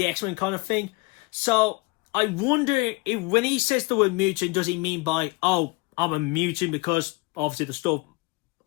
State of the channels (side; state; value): right; quieter; 24.9 dB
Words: X-Men kind of thing. So I wonder if when he says the word mutant, does he mean by, I'm a mutant because obviously the stuff,